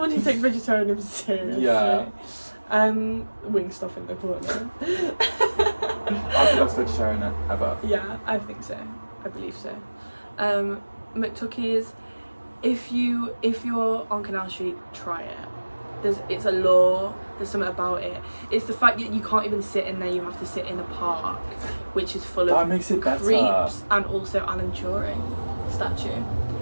who takes vegetarianism seriously. Yeah. Wing stuff in the corner. I'm the best vegetarian ever. Yeah, I think so. I believe so. McTuckies, if you're on Canal Street, try it. It's a law. There's something about it. It's the fact that you can't even sit in there. You have to sit in a park, which is full That of makes it better. creeps, and also Alan Turing statue.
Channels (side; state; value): both; inverted; correlation -1.00